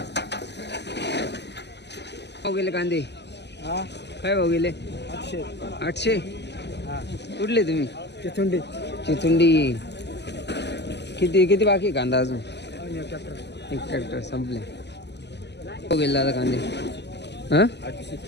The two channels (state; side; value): late; right; 0.50 ms